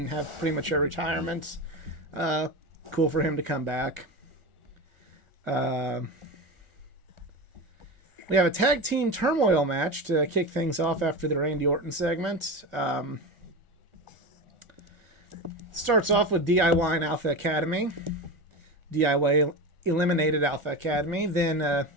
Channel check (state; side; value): late; left; 1.4 ms